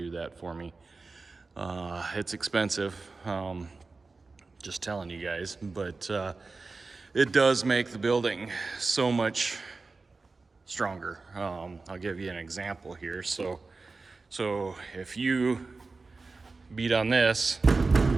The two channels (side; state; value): left; quieter; 3.9 dB